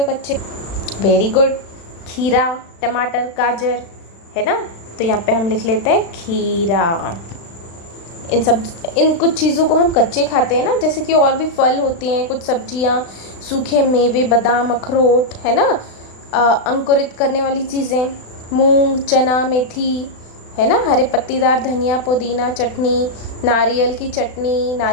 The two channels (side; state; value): right; late; 36 ms